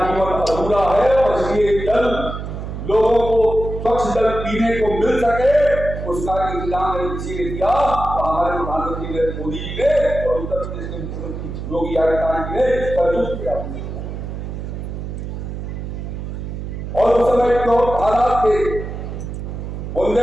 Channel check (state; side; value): noise; right; hum, 7 dB below the sound